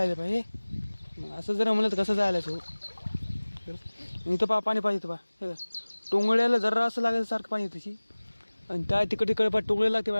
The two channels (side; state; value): both; inverted; correlation -1.00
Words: पाय हे असं जर म्हणलं तर कसं जायला सो. इथं पहा पाणी पाहिजे पहा हे का. टोंगळ्याला जरा असं लागेल सारखं पाणी त्याची. आणि त्या तिकडे पा टोंगळ्याला